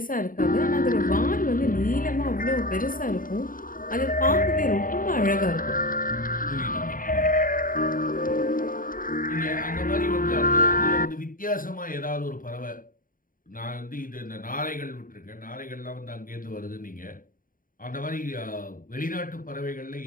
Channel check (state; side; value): late; right; 0.40 ms